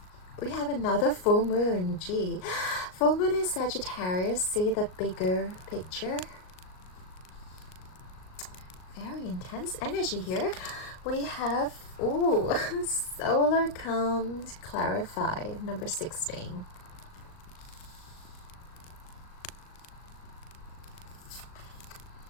We have another full moon, gee. Full moon in Sagittarius, see the bigger picture. Very intense energy here. We have, solar comes, clarify, number 16.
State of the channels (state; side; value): late; right; 38 ms